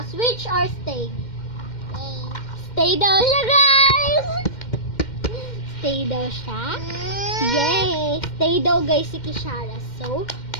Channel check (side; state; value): right; late; 2.1 ms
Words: switch or stay? Stay daw siya, guys! Stay daw siya. Yay! Stay daw guys si Kishara. So,